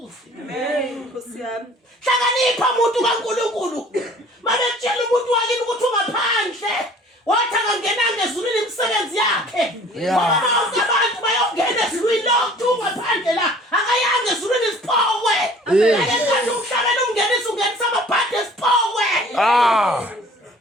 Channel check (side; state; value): both; normal; correlation 0.50